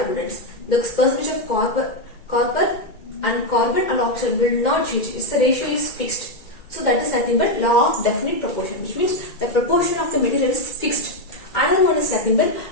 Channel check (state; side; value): late; right; 2.3 ms